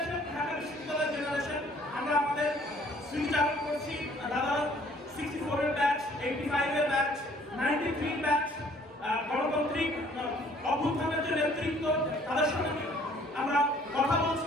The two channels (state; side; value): normal; both; correlation 0.58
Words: ঢাকা বিশ্ববিদ্যালয়ের জেনারেশন আমরা আমাদের স্মৃতি চালু করছি। দাদা 64 এর ব্যাচ, 85 এর ব্যাচ, 93 ব্যাচ, গণতান্ত্রিক অভ্যুত্থানের যে নেতৃত্ব তাদের সঙ্গে আমরা কথা বলছি